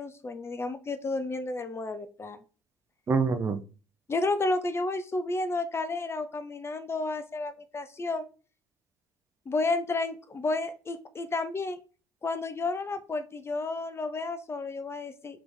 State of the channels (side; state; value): both; normal; correlation 0.70